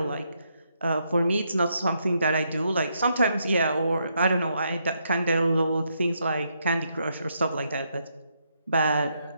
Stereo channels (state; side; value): inverted; both; correlation -0.78